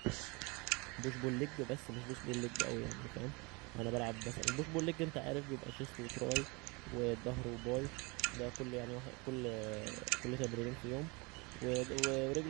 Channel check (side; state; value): left; quieter; 27.7 dB